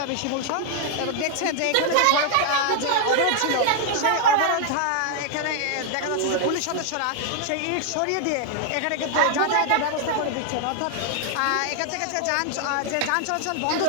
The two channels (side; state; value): both; different; correlation 0.00